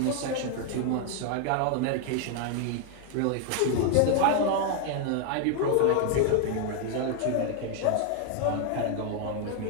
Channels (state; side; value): different; both; correlation 0.00